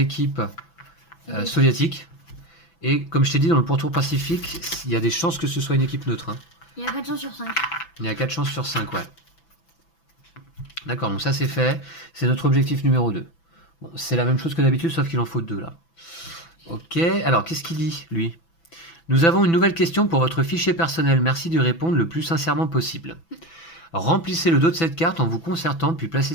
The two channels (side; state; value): right; late; 6.0 ms